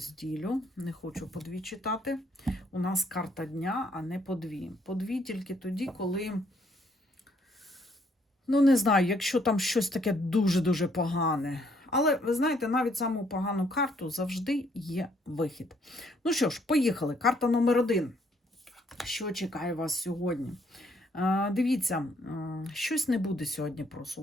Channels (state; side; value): normal; both; correlation 0.68